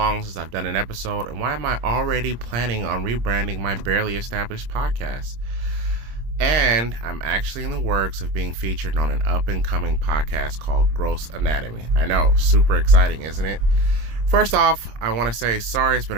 since I've done an episode? And why am I already planning on rebranding my barely established podcast? And I'm actually in the works of being featured on an up-and-coming podcast called Gross Anatomy. I know, super exciting, isn't it? First off, I want to say sorry. It's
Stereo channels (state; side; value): late; left; 26 ms